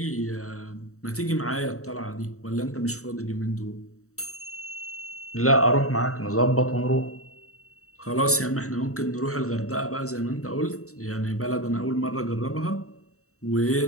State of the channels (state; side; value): late; right; 0.64 ms